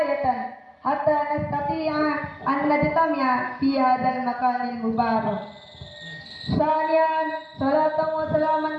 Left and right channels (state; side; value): identical; both; correlation 1.00